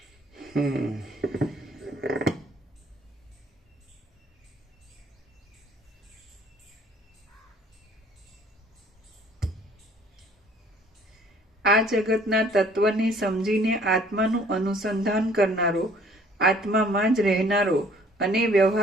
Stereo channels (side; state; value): both; normal; correlation 0.57